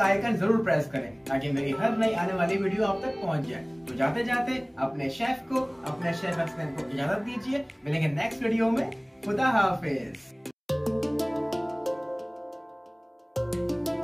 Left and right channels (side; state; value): both; identical; correlation 1.00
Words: आइकन जरूर प्रेस करें, ताकि मेरी हर नई आने वाली वीडियो आप तक पहुंच जाए। तो जाते जाते अपने शेफ हसनैन को इजाजत दीजिए। मिलेंगे नेक्स्ट वीडियो में। खुदा हाफिज।